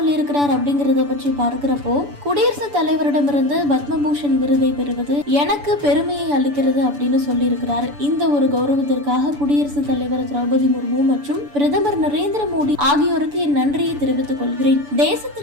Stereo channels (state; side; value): late; left; 6.9 ms